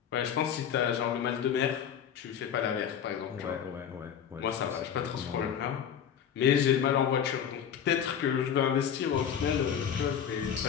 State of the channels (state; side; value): quieter; right; 8.5 dB